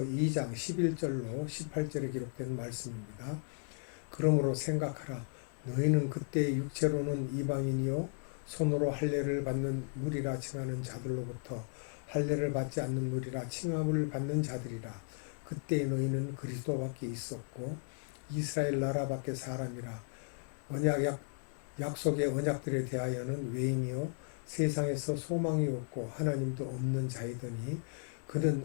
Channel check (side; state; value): right; silent; 54 dB below the other